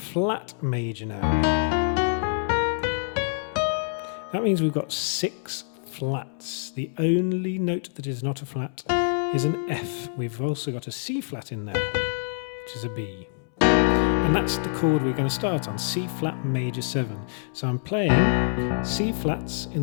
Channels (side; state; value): right; silent; 61 dB below the other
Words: major now. That means we've got 6 flats. The only note that is not a flat is an F. We've also got a C flat in there, which is a B. And that's the chord we're going to start on, C flat major 7. So I'm playing C flats in